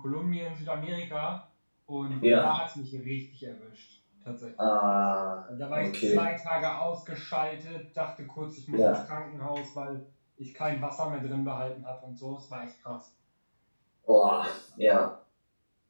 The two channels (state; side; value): inverted; both; correlation -1.00